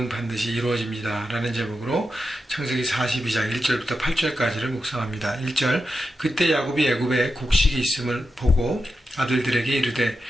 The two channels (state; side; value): normal; both; correlation 0.89